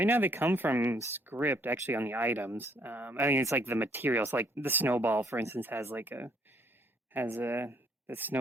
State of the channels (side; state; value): both; normal; correlation 0.67